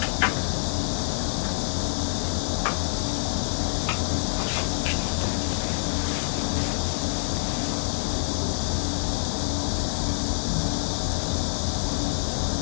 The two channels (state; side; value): silent; right; digital silence